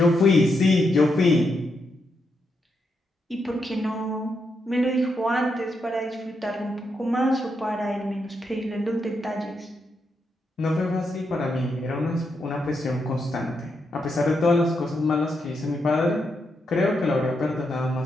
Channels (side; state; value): both; normal; correlation 0.82